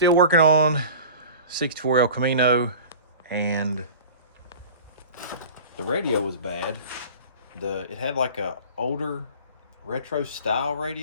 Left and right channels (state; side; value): inverted; both; correlation -0.39